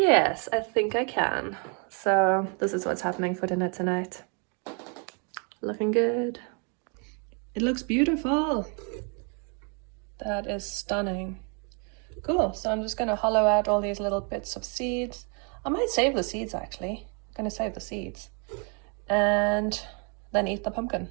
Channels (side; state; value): left; quieter; 37.3 dB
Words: I think I can. So this is what's happening for dinner tonight. Looking good. It looks beautiful. That is stunning. Cool, so I'm just gonna hollow out all these little bits of seeds. I might save the seeds actually. I'm gonna save the seeds. And then eat the pumpkin.